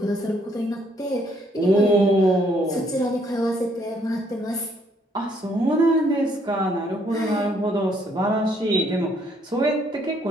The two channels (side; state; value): both; normal; correlation 0.68